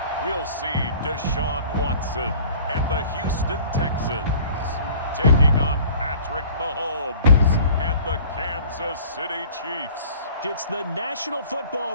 We'll see Deshaun Watson and the Houston Texans taking on Patrick Mahomes and the Kansas City Chiefs. It's the National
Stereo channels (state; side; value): inverted; both; correlation -0.47